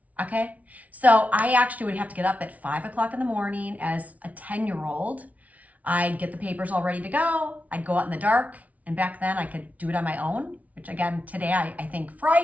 Okay. So I actually would have to get up at 5 o'clock in the morning as a 10-year-old. I'd get the papers all ready to go. I'd go out in the dark. And back then I could do it on my own, which again, today I think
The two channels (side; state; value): left; late; 0.070 ms